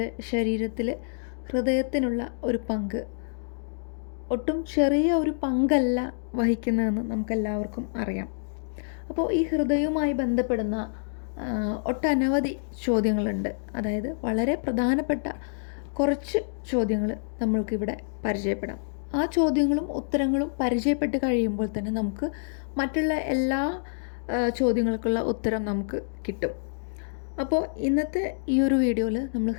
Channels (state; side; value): silent; right; digital silence